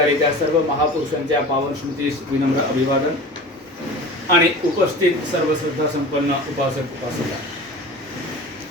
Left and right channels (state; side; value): normal; both; correlation 0.36